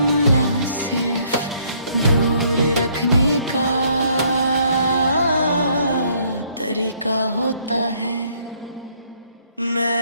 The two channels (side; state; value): both; inverted; correlation -0.66